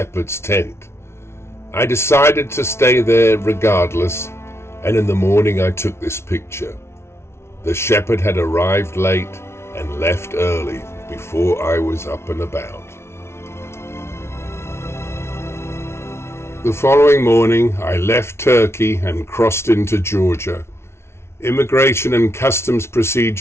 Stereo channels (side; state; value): right; late; 0.13 ms